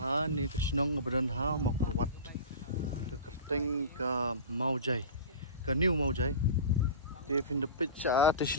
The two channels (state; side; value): inverted; both; correlation -0.33